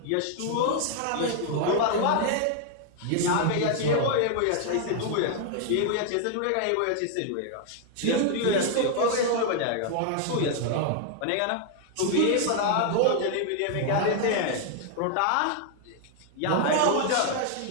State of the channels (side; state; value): both; different; correlation 0.00